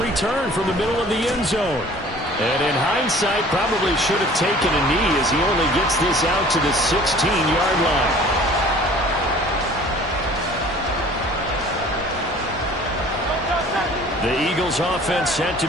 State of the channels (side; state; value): both; normal; correlation 0.49